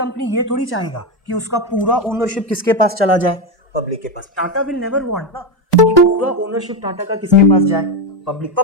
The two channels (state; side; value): normal; both; correlation 0.10